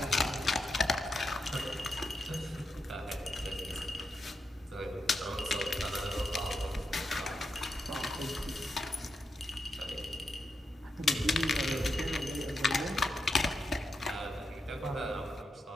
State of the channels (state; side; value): normal; both; correlation 0.86